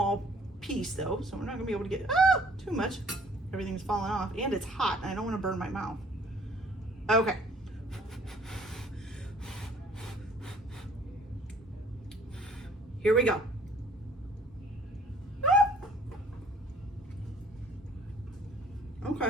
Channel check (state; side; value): normal; both; correlation 0.57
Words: piece though, so we're not gonna be able to get too much. Everything's falling off and it's hot and I don't wanna burn my mouth. Okay. Here we go. Okay.